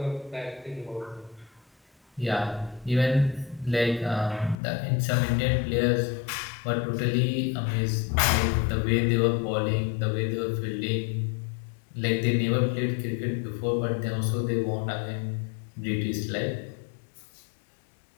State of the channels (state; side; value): drops out; right; at 4.5 s